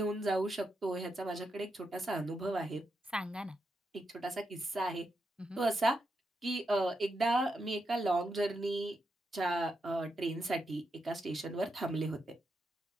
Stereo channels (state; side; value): normal; both; correlation 0.84